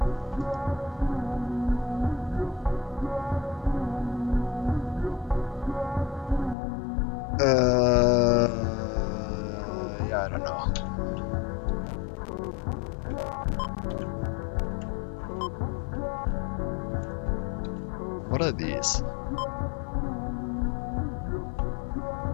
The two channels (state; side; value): drops out; right; at 6.6 s